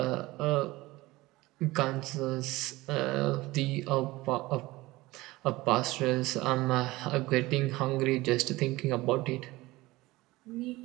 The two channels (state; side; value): quieter; left; 19.7 dB